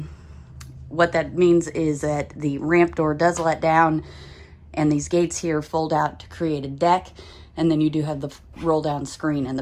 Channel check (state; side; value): identical; both; correlation 1.00